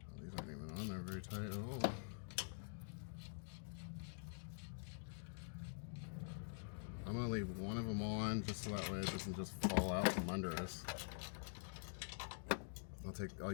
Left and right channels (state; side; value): silent; right; digital silence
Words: these aren't even on there very tight at all. I'm gonna leave one of them on just so that way it doesn't just fall out from under us. I'll